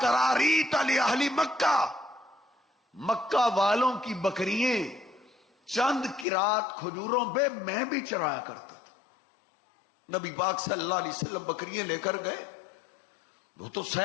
قراریت لاہل مکہ، مکہ والوں کی بکریاں چند قرات کھجوروں پہ میں بھی چرایا کرتا تھا۔ نبی پاک صلی اللہ علیہ وسلم بکریاں لے کر گئے، وہ تو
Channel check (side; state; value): right; drops out; at 6.2 s